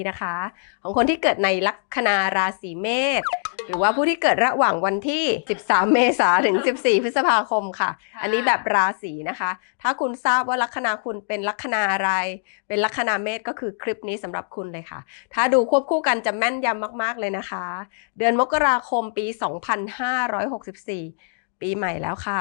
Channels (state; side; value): silent; right; digital silence